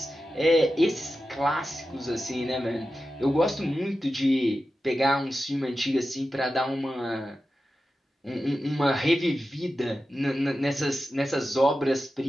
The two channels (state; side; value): normal; both; correlation 0.92